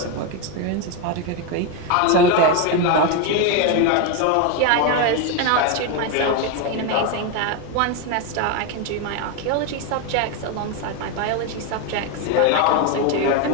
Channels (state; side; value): different; both; correlation 0.02